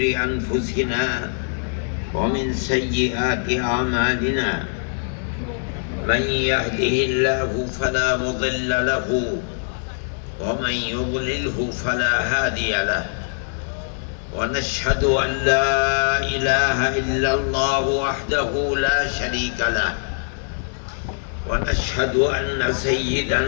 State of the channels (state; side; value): silent; right; digital silence